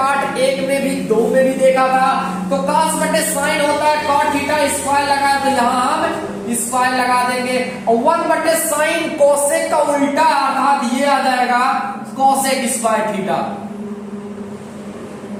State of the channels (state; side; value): identical; both; correlation 1.00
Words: 1 में भी 2 में भी देखा था। तो कॉस बटे साइन होता है कॉट थीटा, स्क्वायर लगाया तो यहां हम स्क्वायर लगा देंगे, और 1 बटे साइन कोसेक का उल्टा, अर्थात ये आ जाएगा कोसेक स्क्वायर थीटा।